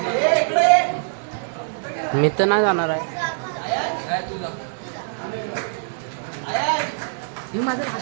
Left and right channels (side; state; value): left; silent; digital silence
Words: मी तर नाही जाणार आहे.